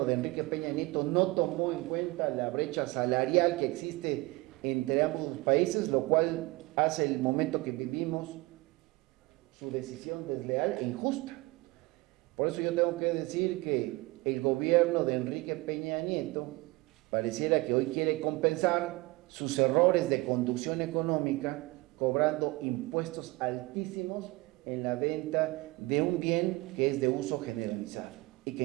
de Enrique Peña Nieto no tomó en cuenta la brecha salarial que existe entre ambos países, lo cual hace el momento que vivimos su decisión desleal e injusta? Por eso yo tengo que decir que el gobierno de Enrique Peña Nieto pareciera que hoy quiere compensar sus errores de conducción económica cobrando impuestos altísimos en la venta de un bien que es de uso generalizado y que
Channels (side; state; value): left; quieter; 22.4 dB